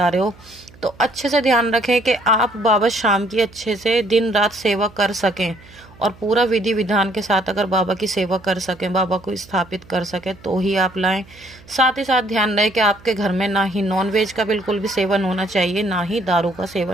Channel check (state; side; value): noise; right; hum, 24 dB below the sound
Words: रहे हो तो अच्छे से ध्यान रखें कि आप बाबा शाम की अच्छे से दिन रात सेवा कर सकें, और पूरा विधि विधान के साथ अगर बाबा की सेवा कर सकें, बाबा को स्थापित कर सकें, तो ही आप लाएं। साथ ही साथ ध्यान रहे कि आपके घर में ना ही नॉनवेज का बिल्कुल भी सेवन होना चाहिए, ना ही दारू का